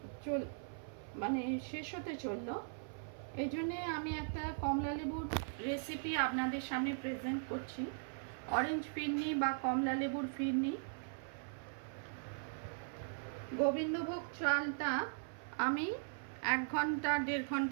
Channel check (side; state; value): left; silent; 51 dB below the other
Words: শেষ হতে চললো। এই জন্যে আমি একটা কমলা লেবুর রেসিপি আপনাদের সামনে প্রেজেন্ট করছি। অরেঞ্জ ফিরনি বা কমলা লেবুর ফিরনি। গোবিন্দভোগ চালটা আমি 1 ঘন্টা 1.5